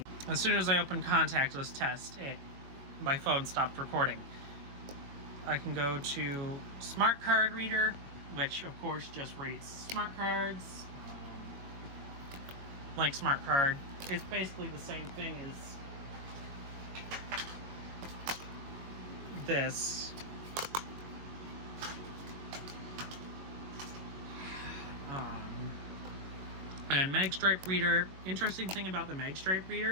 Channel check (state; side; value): late; left; 21 ms